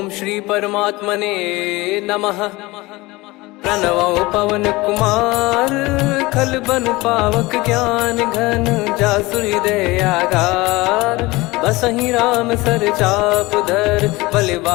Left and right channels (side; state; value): right; quieter; 21.5 dB